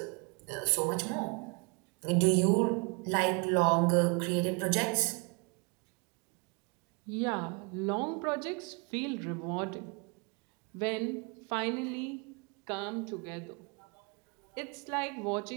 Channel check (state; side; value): quieter; left; 32.0 dB